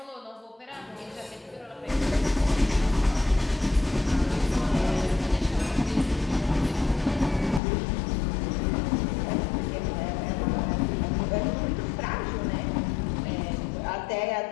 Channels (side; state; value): right; drops out; at 7.6 s